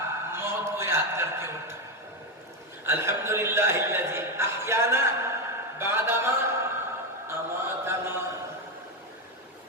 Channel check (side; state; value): both; normal; correlation 0.09